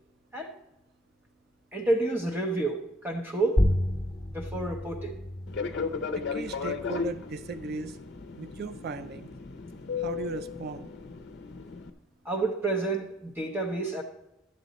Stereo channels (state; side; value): normal; both; correlation 0.60